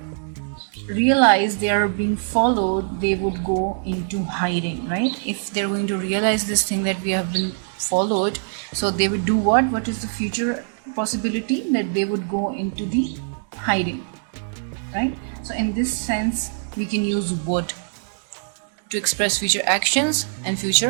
realize they are being followed, they would go into hiding, right? If they're going to realize this thing that we have been followed, so they would do what? What is the future possibility? That they would go into the hiding, right? So in this sense, we can use would to express future actions and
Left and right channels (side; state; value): left; silent; digital silence